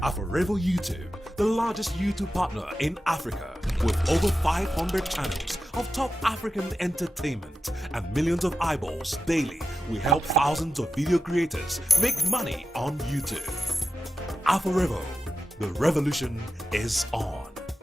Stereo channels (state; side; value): normal; both; correlation 0.91